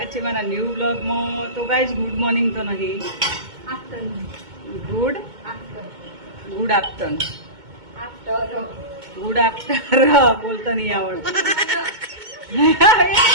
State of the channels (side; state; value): left; late; 2.2 ms